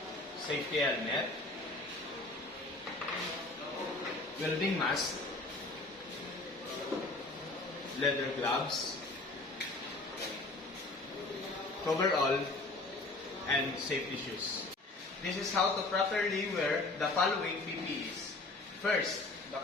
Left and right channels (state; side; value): quieter; right; 3.0 dB